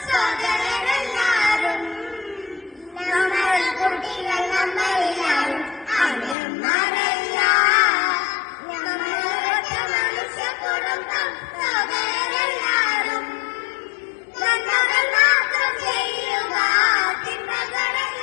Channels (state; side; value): drops out; right; at 6.4 s